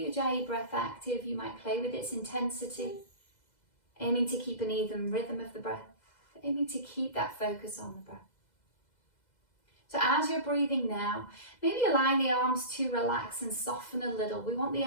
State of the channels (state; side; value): late; right; 2.0 ms